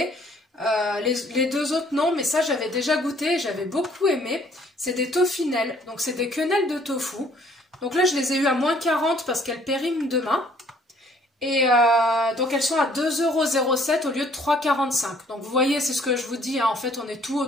Les 2 autres non, mais ça j'avais déjà goûté et j'avais beaucoup aimé. C'est des tofinelles, donc c'est des quenelles de tofu. Donc là je les ai eues à moins 40 parce qu'elles périment demain. Et donc elles sont à 2,07 € au lieu de 3,45 €. Donc vous voyez, c'est ce que je vous dis, hein, en fait on est tout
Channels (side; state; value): both; normal; correlation 0.61